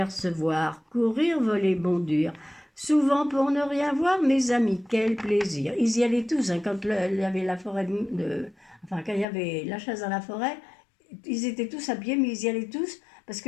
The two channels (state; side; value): drops out; right; at 9.2 s